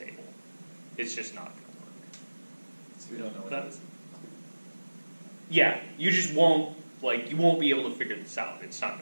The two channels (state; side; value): inverted; both; correlation -1.00